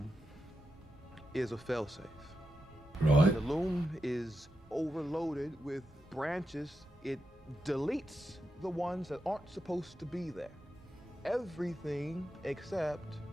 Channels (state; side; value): normal; both; correlation 0.88